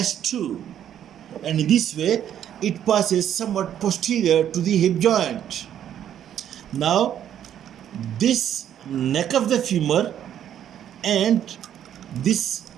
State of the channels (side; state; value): left; quieter; 10.2 dB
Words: and in this way it passes somewhat posterior to the hip joint. Now this neck of the femur and this